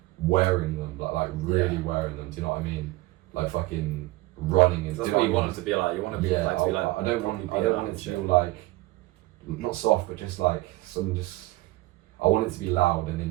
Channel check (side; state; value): left; quieter; 19.6 dB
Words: wearing them, like really wearing them, do you know what I mean? Like fucking running and that's what you want it to be like. You want to be like to be like. I don't want it to feel like not soft, but just like I want it to be loud and in